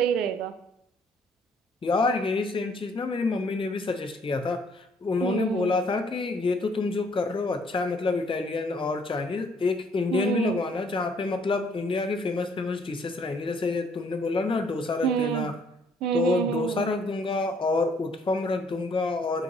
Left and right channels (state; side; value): normal; both; correlation 0.64